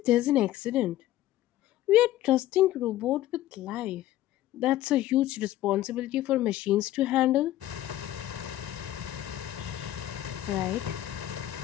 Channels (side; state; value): right; quieter; 14.1 dB